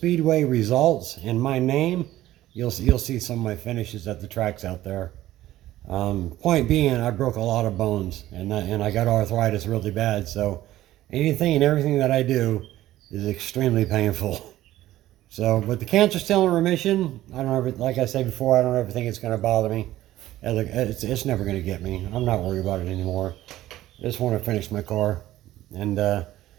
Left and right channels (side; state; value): left; quieter; 14.7 dB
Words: results and my name, you'll see some of my finishes at the tracks out there. Point being, I broke a lot of bones, and I got arthritis really bad. So anything and everything that I do is extremely painful. So, but the cancer's still in remission. I don't ever, like I said before, I don't ever think it's going to bother me. It's never going to get me. I'm not worried about it anymore. I just want to finish my car. And